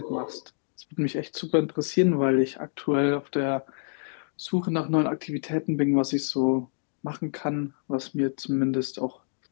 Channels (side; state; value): right; silent; digital silence